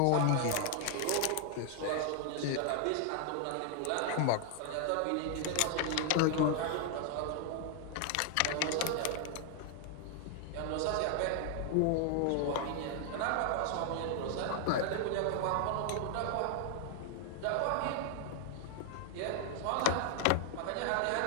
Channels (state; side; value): different; both; correlation 0.00